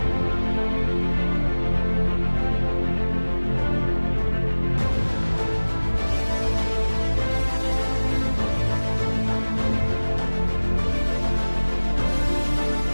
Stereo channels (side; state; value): both; inverted; correlation -1.00